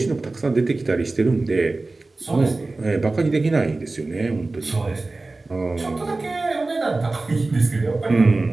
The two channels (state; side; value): quieter; left; 3.3 dB